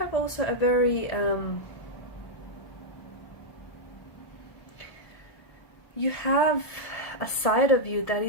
also a very you have a side of you that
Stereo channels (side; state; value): right; late; 1.7 ms